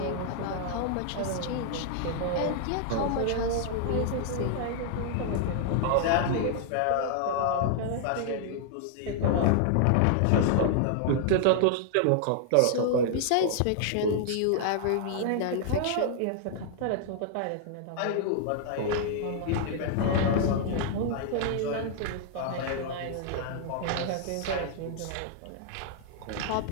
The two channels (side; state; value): both; different; correlation -0.01